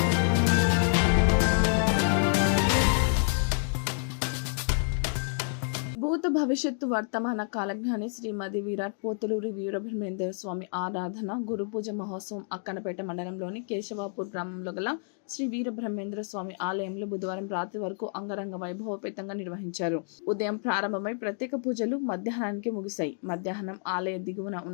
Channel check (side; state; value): right; silent; 59 dB below the other